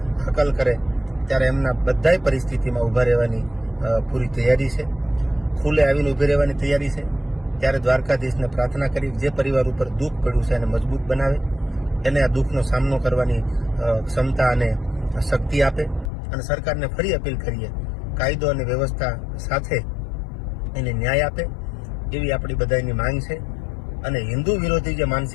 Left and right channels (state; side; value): drops out; right; at 16.1 s